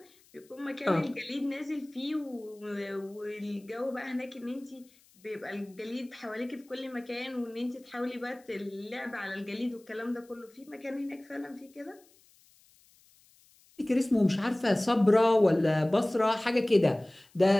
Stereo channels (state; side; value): noise; left; hiss, 30 dB below the sound